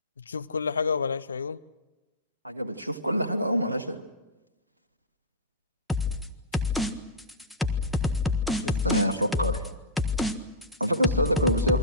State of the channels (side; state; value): both; normal; correlation -0.18